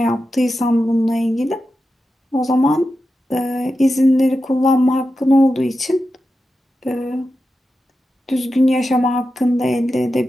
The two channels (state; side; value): normal; both; correlation 0.90